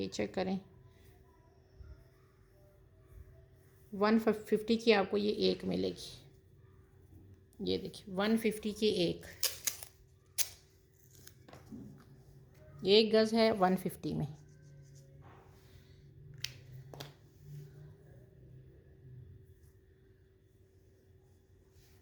चेक करें। 150 की आपको ये एक मिलेगी। ये देखिए 150 की एक, 1 गज़ है 150 में।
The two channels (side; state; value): both; identical; correlation 1.00